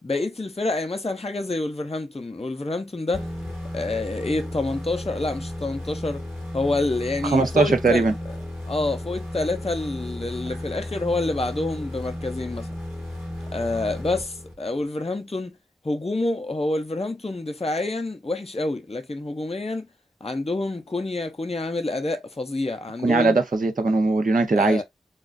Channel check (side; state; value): both; normal; correlation 0.80